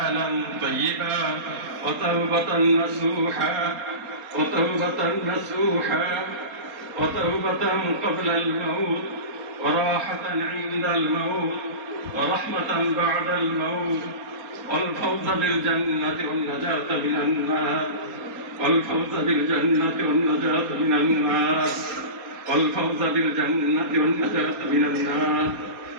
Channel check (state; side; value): late; left; 4.3 ms